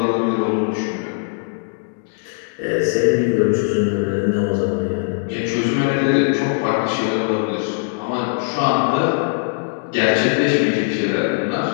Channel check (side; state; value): right; silent; digital silence